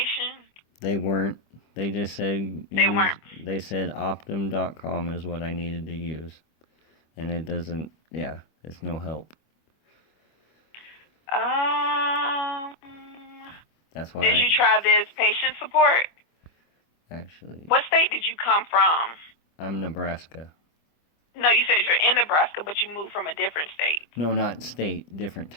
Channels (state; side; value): late; right; 25 ms